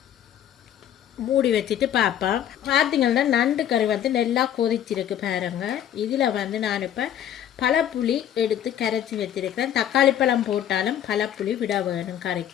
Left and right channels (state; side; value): quieter; right; 10.4 dB